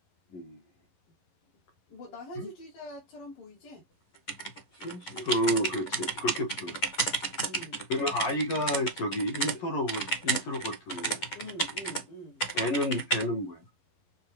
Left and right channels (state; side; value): late; right; 11 ms